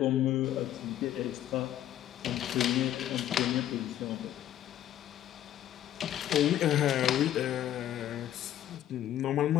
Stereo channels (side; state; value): right; quieter; 11.8 dB